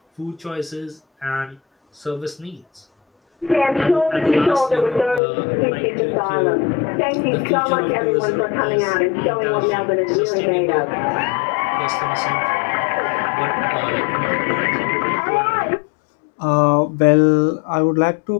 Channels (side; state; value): right; drops out; at 5.2 s